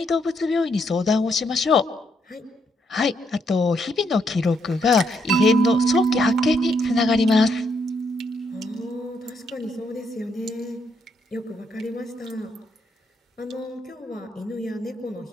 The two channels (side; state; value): both; normal; correlation 0.76